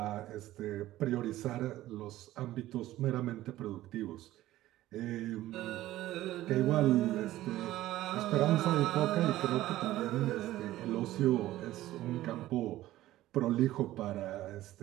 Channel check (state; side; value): quieter; left; 15.2 dB